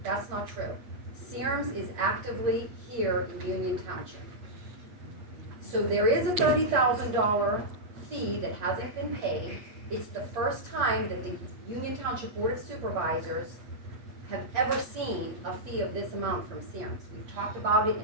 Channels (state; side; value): late; left; 8.1 ms